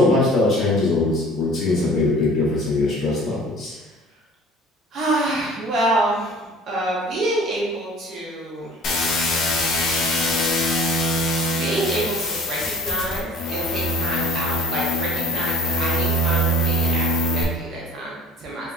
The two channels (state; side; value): normal; both; correlation 0.48